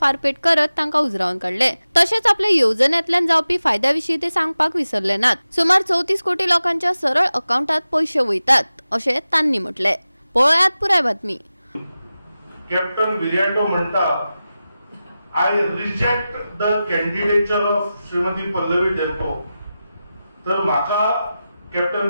फारपेट करत तांकां उजरावन काढले। तशेंच आपल्या येवजण्यांतल्यान जावपी फायद्याविशीं ते सांगपाक विसरले नात। सुमार 34 कोटी लोकांच्या सरळ अकाउंटात पैसे वयतात अशें तांणी म्हटले। पळयात पुराय बातमी। कॅप्टन विराटो म्हणटा I reject the candidature of Shrimati Pallavi डेल्पो। तर म्हाका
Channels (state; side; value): inverted; both; correlation -0.94